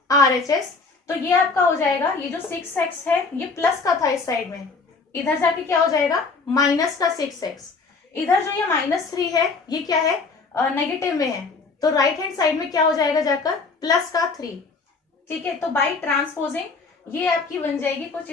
RHS। तो ये आपका हो जाएगा, ये जो 6x है ये प्लस का था इस साइड में, इधर जाके क्या हो जाएगा माइनस का 6x। इधर जो ये माइनस 3 है ये क्या है, नेगेटिव में है, तो राइट हैंड साइड में क्या हो जाएगा जाकर प्लस का 3। ठीक है, तो बाय ट्रांसपोजिंग ये आपकी बन जाएगी कुछ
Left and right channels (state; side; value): quieter; right; 4.3 dB